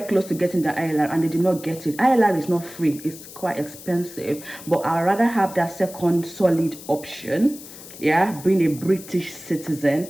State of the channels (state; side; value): noise; left; hiss, 16 dB below the sound